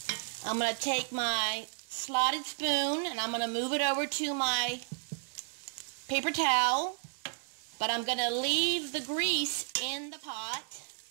I'm going to take my slotted spoon and I'm going to move it over to my paper towel. But I'm going to leave the grease in the pot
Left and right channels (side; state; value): left; silent; 56 dB below the other